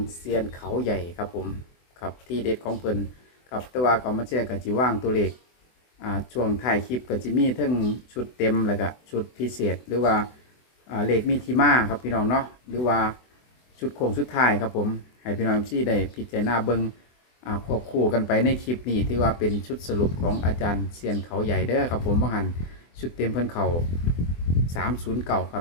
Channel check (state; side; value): late; right; 24 ms